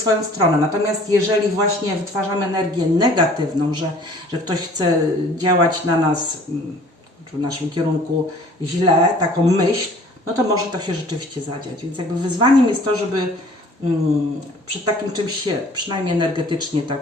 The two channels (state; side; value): normal; both; correlation 0.51